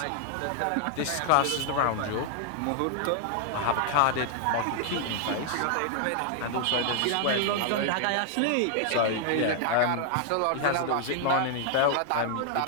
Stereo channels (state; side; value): different; both; correlation -0.01